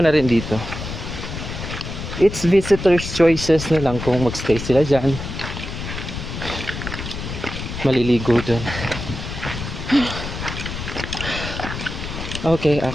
rin dito. It's visitors choices na lang kung magstay sila dyan. Maliligo dun. Okay,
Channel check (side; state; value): left; noise; rumble, 7 dB below the sound